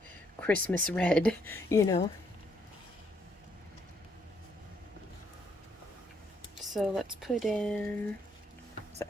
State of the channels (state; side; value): normal; both; correlation 0.71